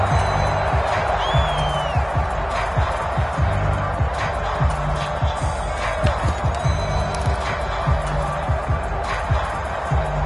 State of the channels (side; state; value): both; identical; correlation 1.00